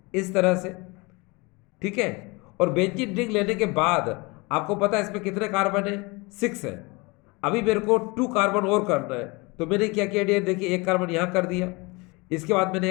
इस तरह से, ठीक है। और बेंजीन रिंग लेने के बाद आपको पता है इसमें कितने कार्बन है, 6 है। अभी मेरे को 2 कार्बन और करना है, तो मैंने क्या किया डियर, देखिए 1 कार्बन यहां कर दिया, इसके बाद मैंने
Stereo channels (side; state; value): right; quieter; 26.6 dB